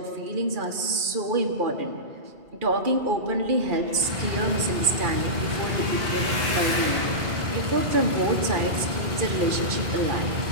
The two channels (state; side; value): late; left; 2.4 ms